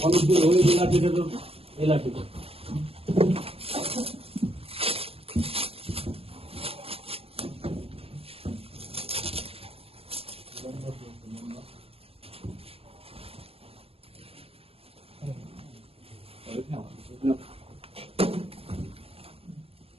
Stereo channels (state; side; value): late; left; 0.28 ms